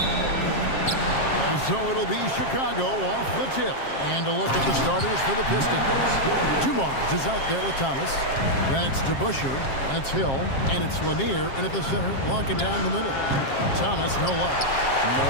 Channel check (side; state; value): right; late; 7.5 ms